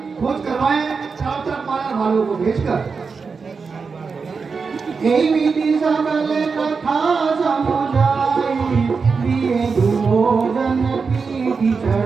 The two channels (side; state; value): left; quieter; 5.1 dB